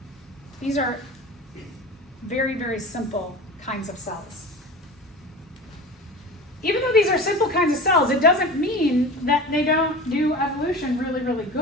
These are very, very simple kinds of cells. Even though these are simple kinds of cells, it doesn't mean that they don't do evolution really, really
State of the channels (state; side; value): normal; both; correlation 0.33